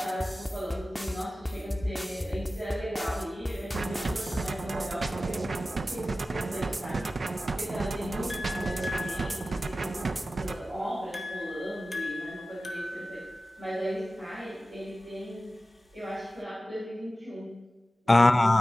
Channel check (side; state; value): both; normal; correlation 0.95